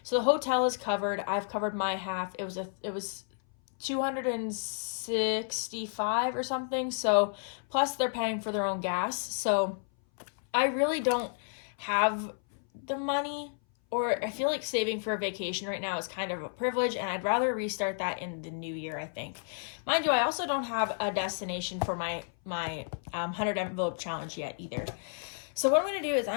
So the hotel is covered. I've covered my half. It was $265 or something. So plus they're paying for their own gas. So I really don't have the money, or I feel like saving for a vacation right now is kind of a privilege, and I'd rather restart that in the new year, I think. Mind you, I also don't have a destination for my 100 envelope challenge yet either. So what I'm going to do is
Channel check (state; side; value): silent; right; 57 dB below the other